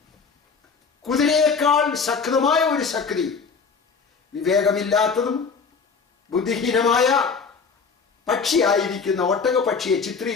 കുതിരയേക്കാൾ ശക്തമായ ഒരു ശക്തി വിവേകമില്ലാത്തതും ബുദ്ധിഹീനമായ പക്ഷിയായിരിക്കുന്ന ഒട്ടകപക്ഷിയെ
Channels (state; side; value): quieter; right; 5.3 dB